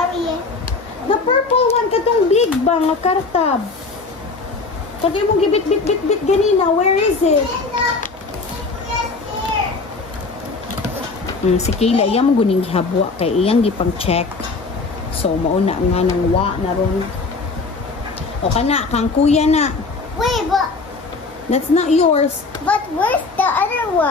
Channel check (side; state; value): right; quieter; 4.0 dB